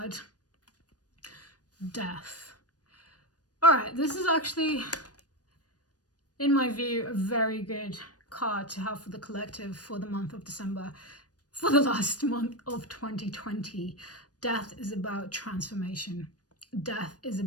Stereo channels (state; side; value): late; right; 0.68 ms